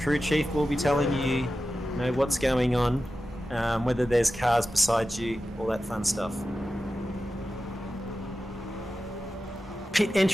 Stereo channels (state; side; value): normal; both; correlation 0.93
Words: chief will be telling you, what's going on, whether there's cars beside you, all that fun stuff. Pit